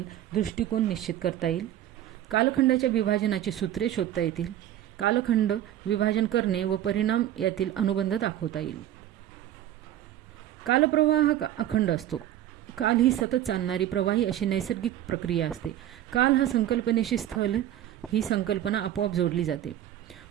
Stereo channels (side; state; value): left; quieter; 12.2 dB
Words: दृष्टिकोन निश्चित करता येईल, कालखंडाच्या विभाजनाची सूत्रे शोधता येतील, कालखंड विभाजन करणे व परिणाम यातील अनुबंध दाखवता येईल। कालप्रवाह अखंड असतो। काल ही सतत चालणारी प्रवाही अशी नैसर्गिक प्रक्रिया असते। काल हा संकल्पनेशी स्थल ही संकल्पना आपोआप जोडली जाते।